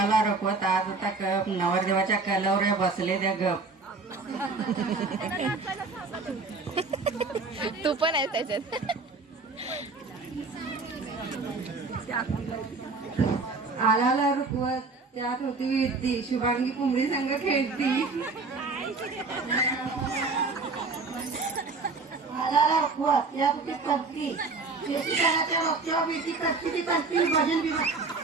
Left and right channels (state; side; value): quieter; left; 4.0 dB